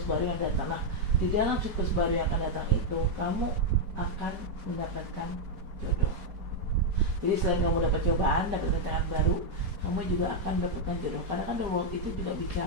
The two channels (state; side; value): late; left; 4.7 ms